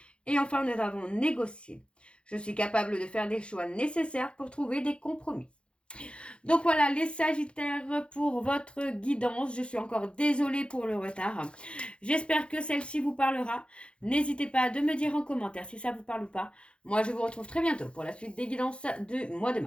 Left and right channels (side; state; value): right; late; 0.057 ms